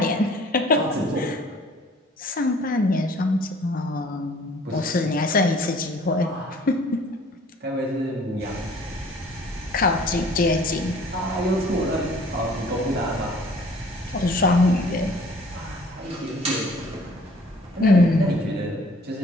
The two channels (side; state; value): both; normal; correlation 0.53